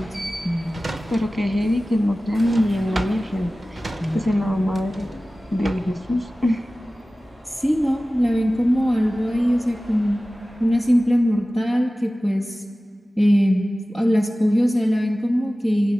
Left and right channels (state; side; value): normal; both; correlation 0.97